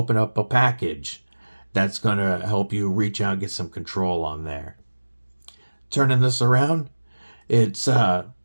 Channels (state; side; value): inverted; both; correlation -1.00